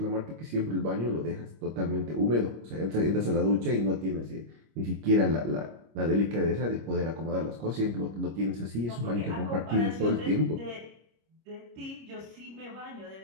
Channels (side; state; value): left; late; 25 ms